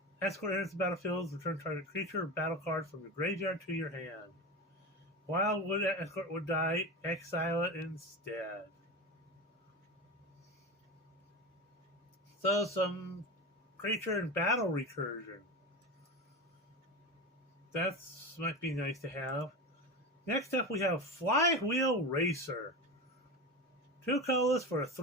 Escort enters the battlefield. Return target creature or battle card from your graveyard to your hand. Wildwood Escort would die. Exile it instead. So some creature and battle recursion. That might be nice to have. Next up, we have Flywheel Racer. 2 colors for a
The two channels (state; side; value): normal; both; correlation 0.24